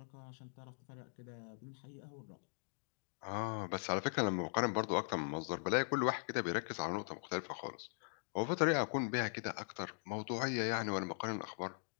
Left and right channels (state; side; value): silent; right; digital silence